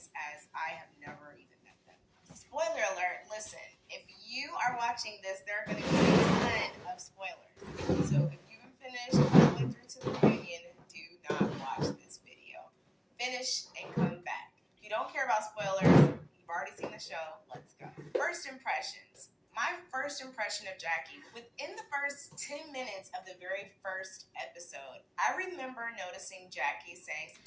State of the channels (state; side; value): identical; both; correlation 1.00